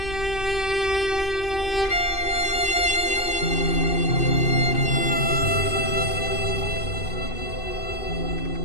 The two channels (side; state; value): right; late; 2.6 ms